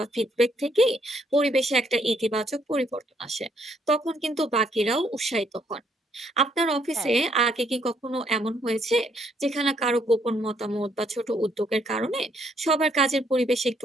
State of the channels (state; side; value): normal; both; correlation 0.70